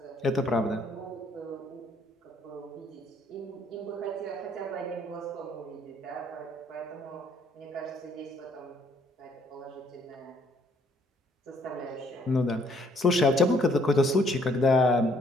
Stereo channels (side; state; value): both; normal; correlation 0.65